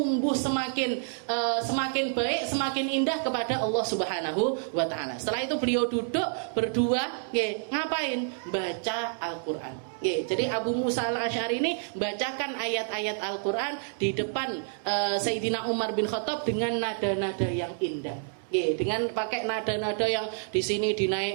semakin baik, semakin indah kepada Allah Subhanahu wa Ta'ala. Setelah itu beliau duduk berdua, ngapain? Baca Al-Quran. Jadi Abu Musa al-Ash'ari ini bacakan ayat-ayat Al-Quran di depan Sayyidina Umar bin Khattab dengan nada-nada yang indah. Dengan pakai nada-nada yang di sini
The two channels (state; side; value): silent; left; digital silence